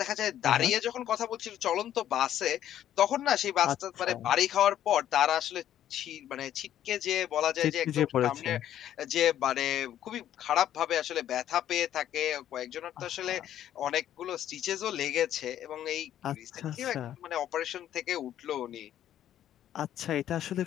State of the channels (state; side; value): quieter; right; 11.3 dB